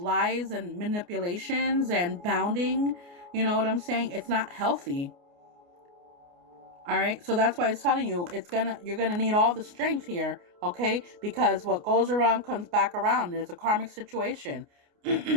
and manipulations and bounding? You know what I'm saying? It's not healthy. All right. So that's why it's telling you you're going to need all the strength here. Okay. Because what goes around comes back around. There's a karmic situation.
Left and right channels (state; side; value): late; left; 29 ms